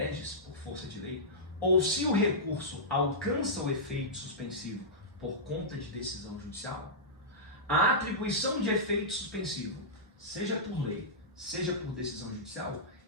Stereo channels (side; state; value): both; normal; correlation -0.14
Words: por força de lei, ou se o recurso alcança o efeito suspensivo por conta de decisão judicial, a atribuição de efeito suspensivo, seja por lei, seja por decisão judicial,